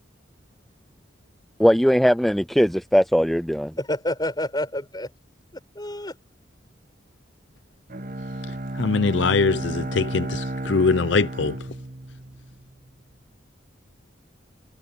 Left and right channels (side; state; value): both; normal; correlation 0.69